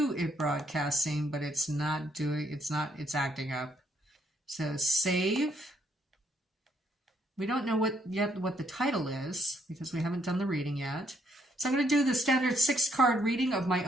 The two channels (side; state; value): both; normal; correlation 0.72